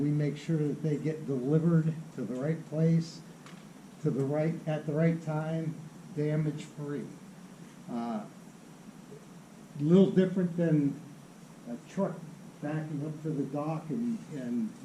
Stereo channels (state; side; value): identical; both; correlation 1.00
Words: make sure that they get delivered to the right place, at the right time, damage-free. A little different than a truck backing up to the dock